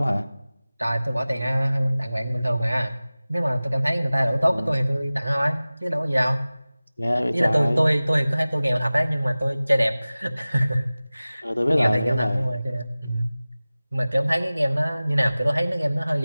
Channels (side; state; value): both; inverted; correlation -0.98